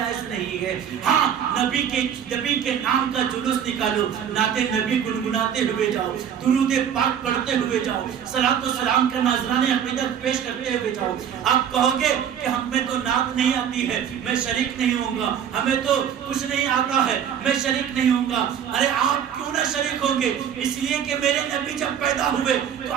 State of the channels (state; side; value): quieter; left; 8.7 dB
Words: نہیں ہے۔ ہاں، نبی کے نام کا جلوس نکالو، نعت نبی گنگناتے ہوئے جاؤ، درود پاک پڑھتے ہوئے جاؤ، صلاۃ و سلام کا نذرانہ عقیدت پیش کرتے ہوئے جاؤ۔ آپ کہو گے کہ ہمیں تو نعت نہیں آتی ہے، میں شریک نہیں ہوں گا، ہمیں تو کچھ نہیں آتا ہے، میں شریک نہیں ہوں گا۔ ارے آپ کیوں نہ شریک ہوں گے؟ اس لیے کہ میرے نبی جب پیدا ہوئے تو